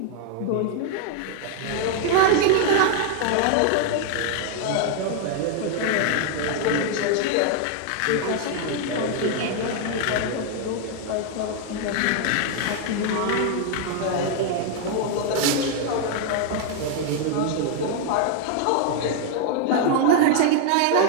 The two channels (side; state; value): both; different; correlation 0.00